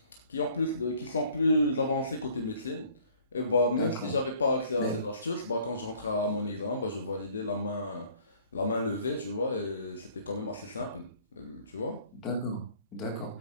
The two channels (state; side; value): inverted; both; correlation -0.56